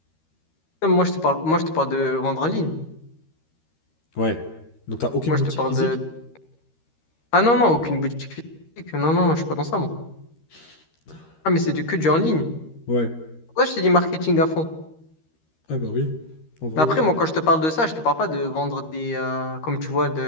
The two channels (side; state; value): right; late; 13 ms